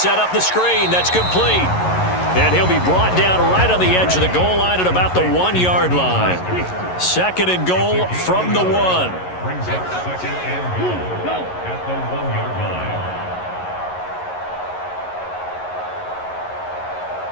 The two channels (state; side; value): late; right; 11 ms